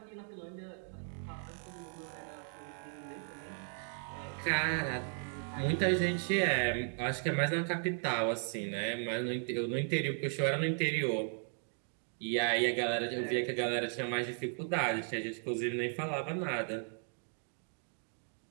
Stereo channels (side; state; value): left; silent; 54 dB below the other